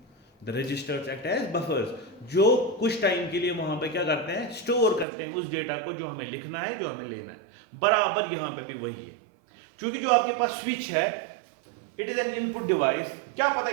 the registers act as buffers, जो कुछ टाइम के लिए वहां पे क्या करते हैं, स्टोर करते हैं उस डेटा को जो हमें लिखना है, जो हमें लेना है। बराबर यहाँ पे भी वही है, क्योंकि जो आपके पास स्विच है it is an input device, क्या पता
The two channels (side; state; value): left; drops out; at 5.1 s